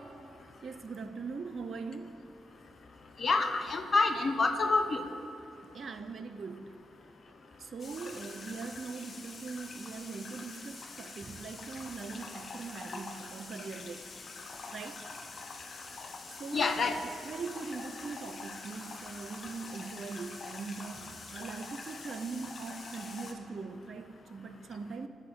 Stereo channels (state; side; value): normal; both; correlation 0.85